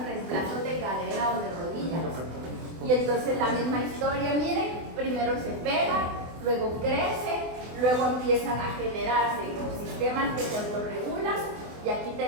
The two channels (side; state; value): left; late; 24 ms